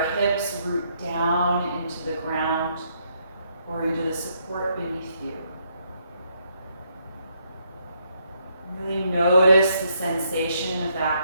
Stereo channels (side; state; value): both; inverted; correlation -0.74